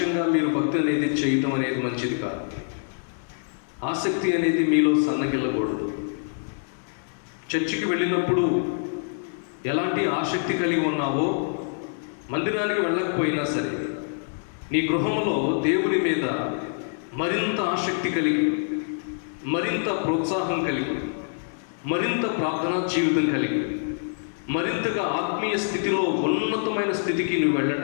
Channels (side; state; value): right; silent; digital silence